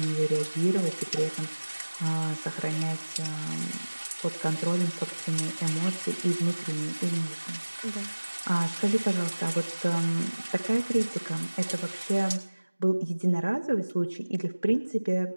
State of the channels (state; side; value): inverted; both; correlation -1.00